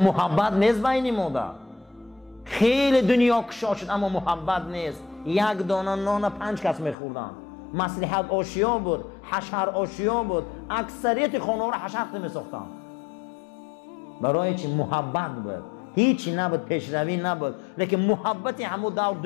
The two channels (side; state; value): right; drops out; at 7.0 s